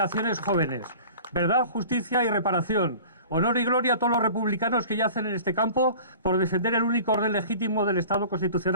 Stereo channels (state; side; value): inverted; both; correlation -0.42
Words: jóvenes. Verdad, justicia y reparación. Honor y gloria a todos los republicanos que yacen en este campo por defender el único orden legítimo del Estado